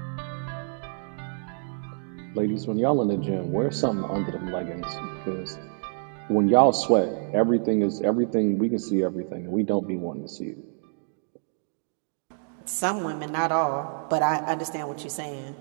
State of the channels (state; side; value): silent; left; digital silence